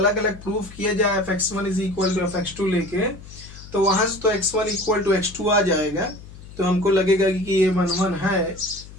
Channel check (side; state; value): left; noise; hum, 17 dB below the sound